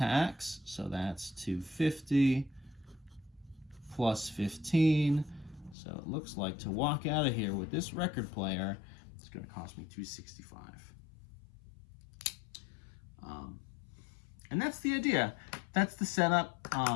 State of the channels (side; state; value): right; drops out; at 5.8 s